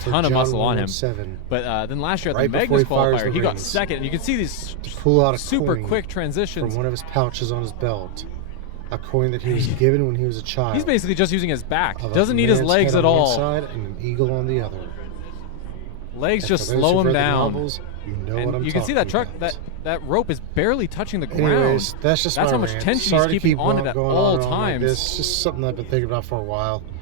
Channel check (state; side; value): different; both; correlation 0.00